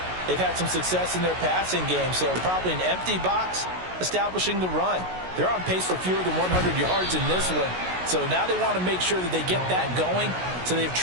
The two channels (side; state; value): left; late; 16 ms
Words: they've had some success in their passing game, so probably an empty box establishing the run. They're on pace for fewer than 100 yards in this one, so now they want to make sure that they get that going so they